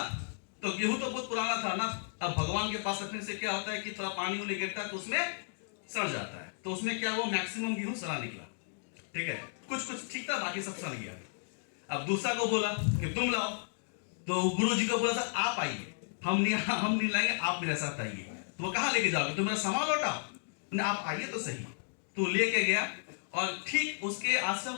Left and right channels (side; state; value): right; silent; digital silence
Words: तो गेहूं तो बहुत पुराना था ना। अब भगवान के पास रखने से क्या होता है कि थोड़ा पानी उन्हें गिरता है तो उसमें सड़ जाता है। तो उसमें क्या वो मैक्सिमम गेहूं सड़ा निकला, ठीक है। कुछ कुछ ठीक था, बाकी सब सड़ गया। अब दूसरा को बोला कि तुम लाओ, तो गुरुजी को बोला सर आप आइए, हम नहीं लाएंगे, आप मेरे साथ आइए। तो वो कहाँ लेके जाओगे, तो मेरा सामान लौटाओ। आप आइए तो सही। तो लेके गया और ठीक उसके आश्रम